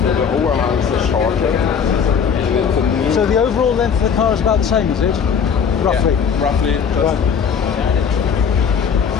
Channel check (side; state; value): right; quieter; 6.8 dB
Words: the overhangs are shorter. And it's a new... So the overall length of the car is about the same, is it? Roughly? Yeah, roughly,